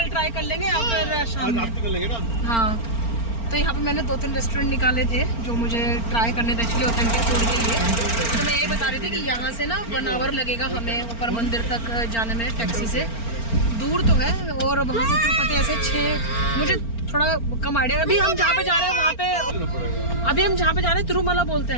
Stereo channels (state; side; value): late; right; 4.4 ms